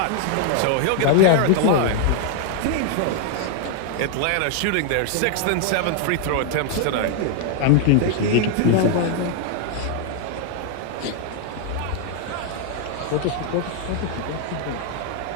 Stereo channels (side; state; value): both; different; correlation 0.00